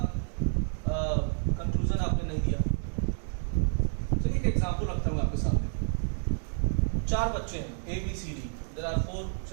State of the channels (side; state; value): left; silent; 58 dB below the other